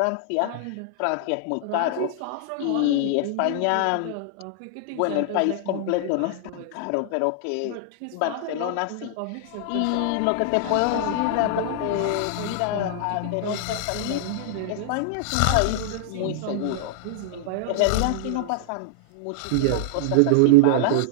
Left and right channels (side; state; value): both; different; correlation -0.01